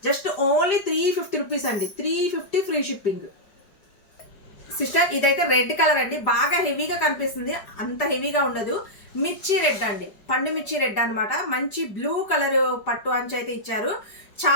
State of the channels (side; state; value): right; late; 5.0 ms